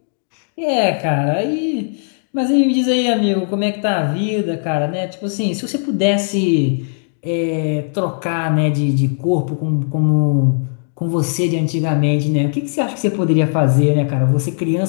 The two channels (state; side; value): silent; right; digital silence